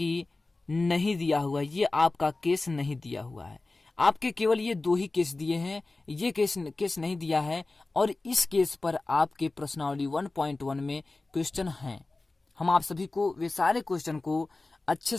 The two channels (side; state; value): right; quieter; 3.3 dB